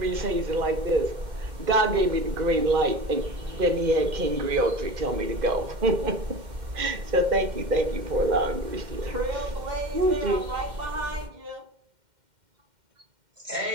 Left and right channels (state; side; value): late; left; 2.1 ms